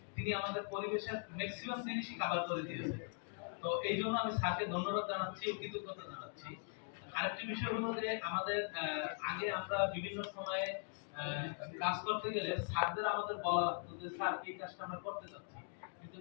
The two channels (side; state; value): right; silent; 50 dB below the other